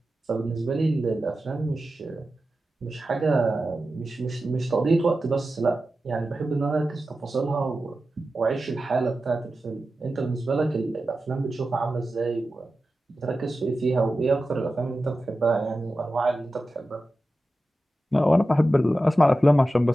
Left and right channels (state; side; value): normal; both; correlation 0.93